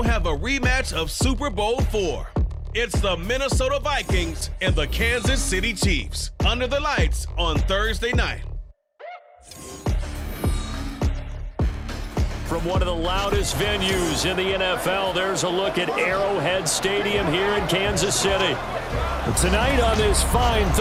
have a rematch of Super Bowl IV. It's the Minnesota Vikings and the Kansas City Chiefs under the lights on Thursday night. From one of the loudest venues in the NFL, there's a look at Arrowhead Stadium here in Kansas City. Tonight on this fine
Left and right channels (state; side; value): identical; both; correlation 1.00